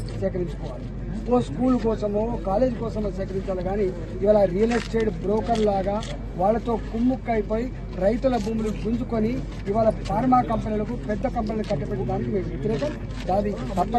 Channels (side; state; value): both; identical; correlation 1.00